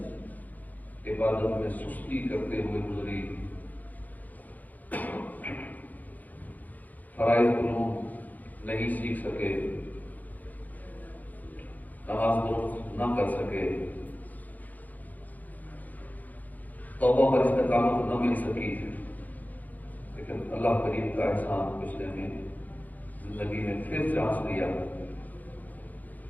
عبادت میں سستی کرتے ہوئے گزری، فرائض علوم نہیں سیکھ سکے، نماز درست نہ کر سکے، توبہ پر استقامت نہ مل سکی، لیکن اللہ کریم کا احسان اس نے ہمیں زندگی میں پھر چانس دیا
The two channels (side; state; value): right; late; 0.081 ms